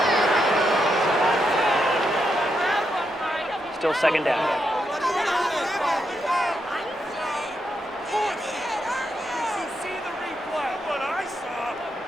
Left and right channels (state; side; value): normal; both; correlation 0.82